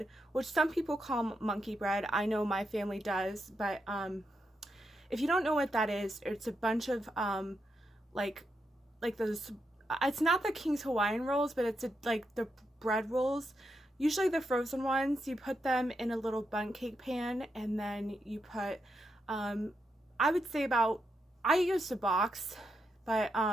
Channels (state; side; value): normal; both; correlation 0.83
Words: which some people call monkey bread. I know my family does, but if you don't know what that is, it's a bunch of like those. It's not the King's Hawaiian rolls, but it's like the bread rolls. Usually the frozen ones, you put them in a little bundt cake pan, and then you put, I would say I used a box, but